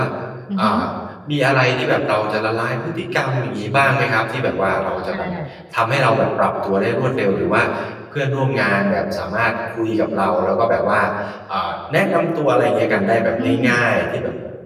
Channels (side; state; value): both; identical; correlation 1.00